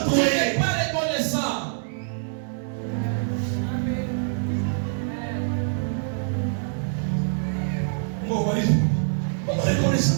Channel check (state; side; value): silent; left; 62 dB below the other